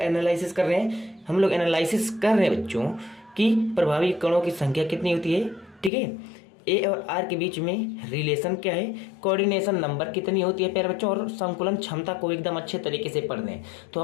कर रहे हैं? हम लोग एनालिसिस कर रहे हैं बच्चों कि प्रभावी कणों की संख्या कितनी होती है। ठीक है, ए और आर के बीच में रिलेशन क्या है, कोऑर्डिनेशन नंबर कितनी होती है प्यारे बच्चों, और संकुलन क्षमता को एकदम अच्छे तरीके से पढ़ लें। तो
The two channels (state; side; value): drops out; right; at 5.9 s